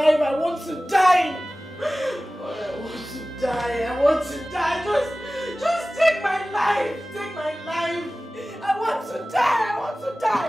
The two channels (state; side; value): normal; both; correlation 0.97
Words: I want to die. God, I want to die. I want to die. Just take my life. Take my life. I want to die. I want to